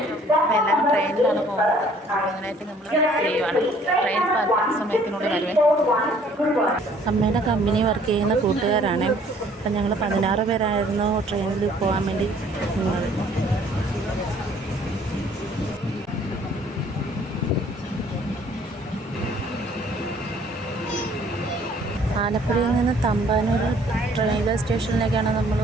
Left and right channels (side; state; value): both; normal; correlation 0.58